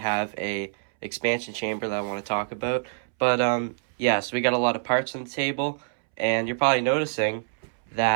a expansion chamber that I want to talk about. But yeah, so we got a lot of parts on the table, and you're probably noticing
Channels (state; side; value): silent; left; 61 dB below the other